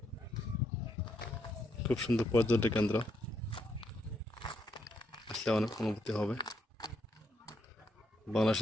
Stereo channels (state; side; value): normal; both; correlation 0.76